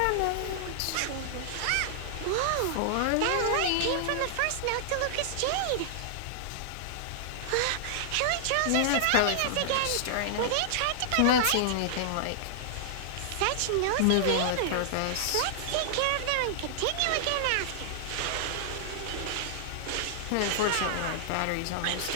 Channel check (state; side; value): different; both; correlation -0.01